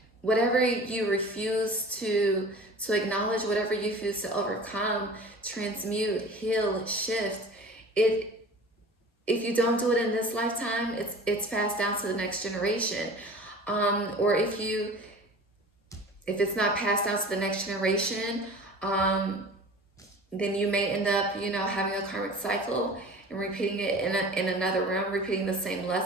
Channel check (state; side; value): normal; both; correlation 0.40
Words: whatever you refuse to acknowledge, whatever you refuse to overcome, transmute, heal, shift, if you don't do it in this lifetime, it's passed down to the next generation. Or if it's not passed down to the next generation, then you may end up, you know, having a karmic cycle and repeating it in another realm, repeating the same